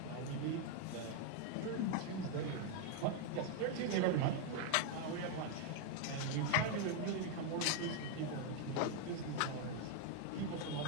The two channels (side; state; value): both; different; correlation 0.00